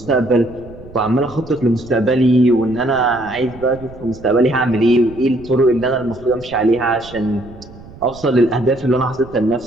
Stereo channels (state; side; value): noise; right; rumble, 19 dB below the sound